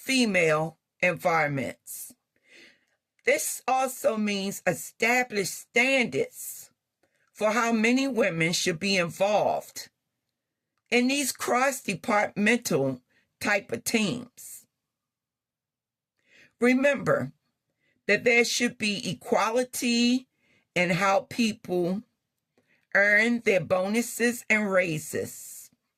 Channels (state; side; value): identical; both; correlation 1.00